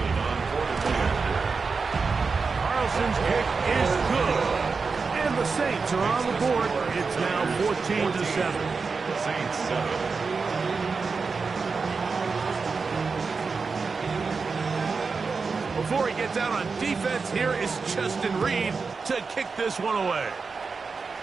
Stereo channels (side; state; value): left; quieter; 4.7 dB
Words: Carlson's kick is good. And the Saints are on the board. It's now 14-7. Saints 7. Before he gets out on defense, here is Justin Reed to kick this one away.